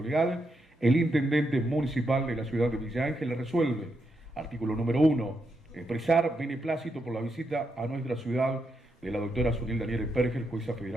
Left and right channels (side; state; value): both; normal; correlation 0.82